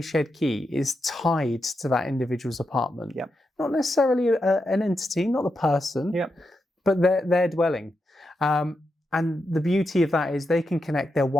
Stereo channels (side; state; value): both; normal; correlation 0.86